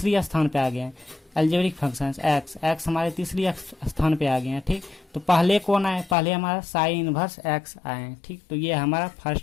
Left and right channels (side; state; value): right; drops out; at 6.2 s